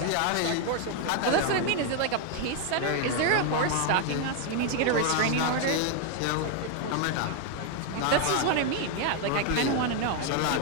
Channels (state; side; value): different; both; correlation 0.00